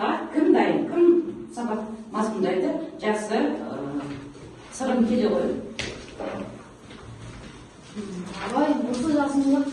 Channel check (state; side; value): identical; both; correlation 1.00